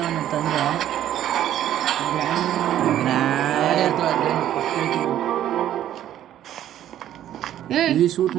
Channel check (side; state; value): left; quieter; 11.7 dB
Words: ಅಂತಂದ್ರೆ ಈ ಶೂಟ್